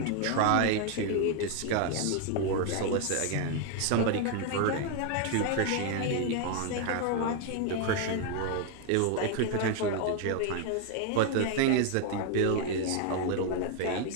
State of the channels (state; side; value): different; both; correlation 0.01